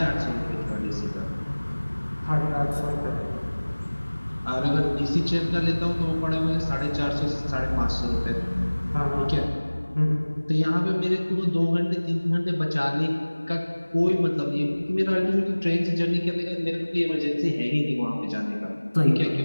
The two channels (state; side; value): inverted; both; correlation -1.00